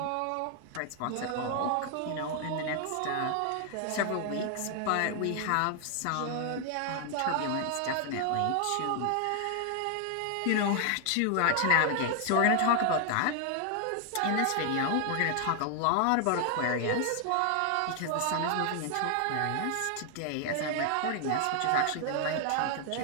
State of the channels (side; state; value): both; different; correlation 0.00